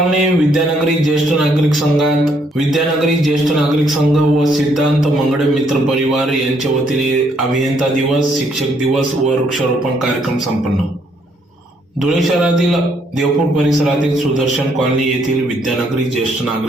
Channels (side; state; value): both; normal; correlation 0.70